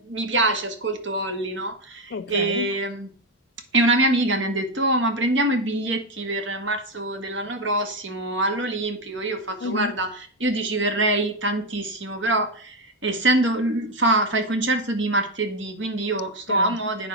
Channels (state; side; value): normal; both; correlation 0.08